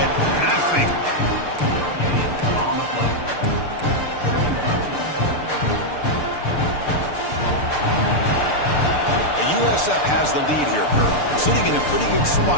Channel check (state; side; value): late; right; 6.8 ms